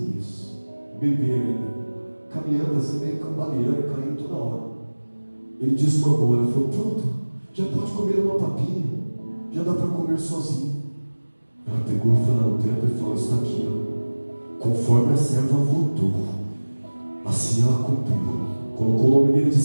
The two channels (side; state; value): both; inverted; correlation -1.00